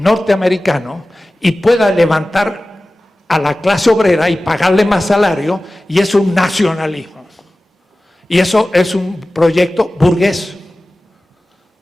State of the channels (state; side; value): normal; both; correlation 0.96